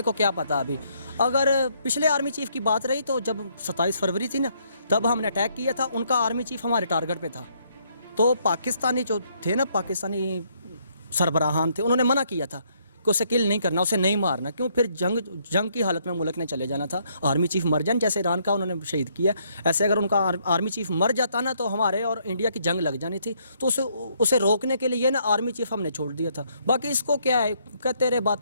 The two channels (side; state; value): both; inverted; correlation -0.70